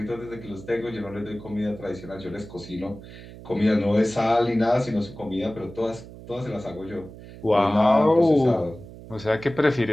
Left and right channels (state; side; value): noise; right; hum, 16 dB below the sound